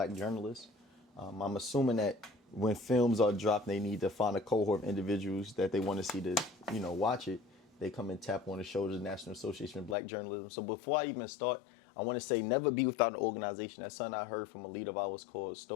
Journalists. I'm assuming that when films are dropped, they need to find a cohort of individuals that they want to see to, watch it. They come and tap on the shoulders of the National Association of Black Journalism. So before I even start, I want to say never be without an organization. That's something I heard from a leader of ours called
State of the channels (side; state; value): right; drops out; at 10.0 s